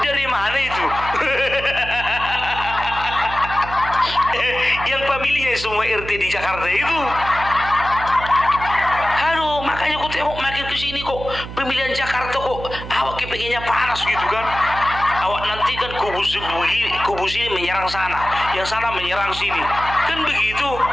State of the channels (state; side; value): noise; right; hum, 10 dB below the sound